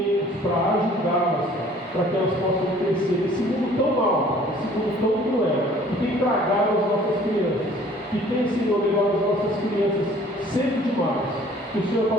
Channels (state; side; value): normal; both; correlation 0.54